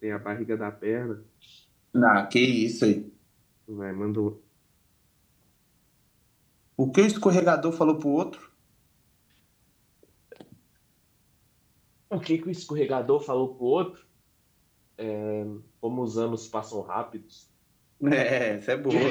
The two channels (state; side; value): identical; both; correlation 1.00